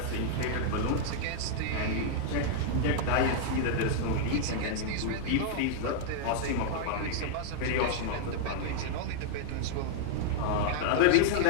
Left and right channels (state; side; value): different; both; correlation -0.01